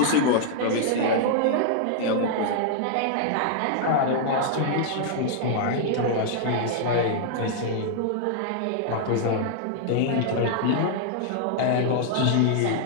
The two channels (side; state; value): both; different; correlation -0.01